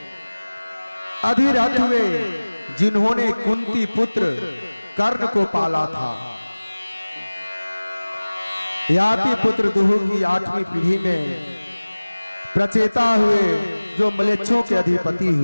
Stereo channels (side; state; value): both; inverted; correlation -1.00